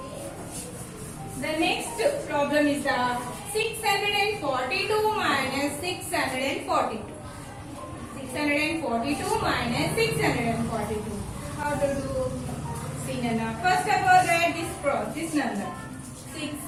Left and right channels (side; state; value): both; identical; correlation 1.00